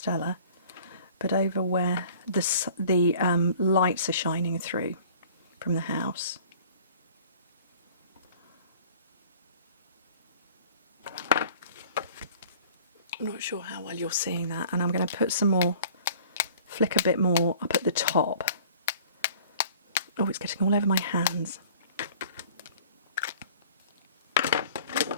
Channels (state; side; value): inverted; both; correlation -0.49